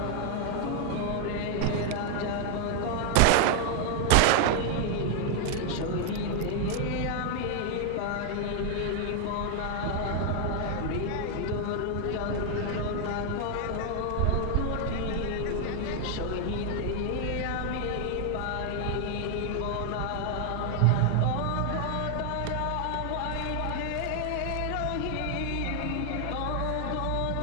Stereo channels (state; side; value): different; both; correlation 0.00